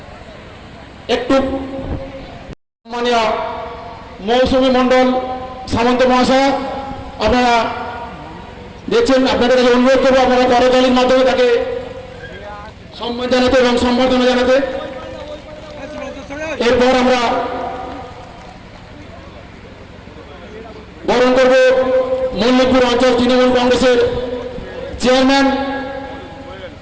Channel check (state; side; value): identical; both; correlation 1.00